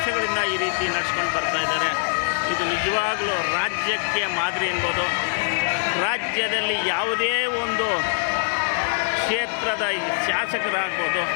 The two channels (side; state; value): right; silent; digital silence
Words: ಈ ರೀತಿ ನಡೆಸ್ಕೊಂಡು ಬರ್ತಾ ಇದ್ದಾರೆ. ಇದು ನಿಜವಾಗಲೂ ರಾಜ್ಯಕ್ಕೆ ಮಾದರಿ ಎನ್ಬೋದು. ರಾಜ್ಯದಲ್ಲಿ ಯಾವುದೇ ಒಂದು ಕ್ಷೇತ್ರದ ಶಾಸಕರಾಗ್ಬೋದು,